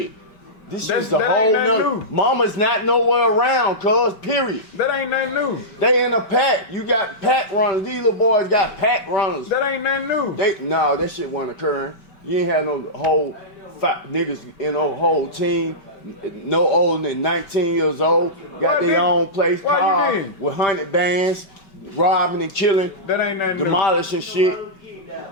This is the that whole ain't nothing nother. new. Mama's not nowhere around, cuz, period. That ain't nothing new. They in a pack. You got pack runners. These little boys got pack runners. That ain't nothing new. No, that shit wasn't occurring. You ain't have no whole niggas in no whole team, no older than 19 years old. Got Why their you- own place, why you car didn't? with 100 bands, robbing and killing, That ain't nothing new. demolishing shit.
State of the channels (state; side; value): late; right; 5.2 ms